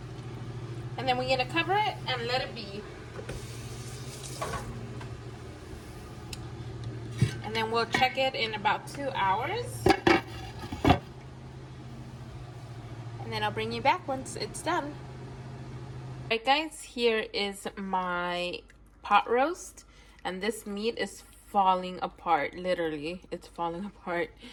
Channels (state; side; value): identical; both; correlation 1.00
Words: And then we're gonna cover it and let it be. And then we'll check it in about 2 hours. And then I'll bring you back once it's done. Alright guys, here is my pot roast. And this meat is falling apart, literally. It's falling apart.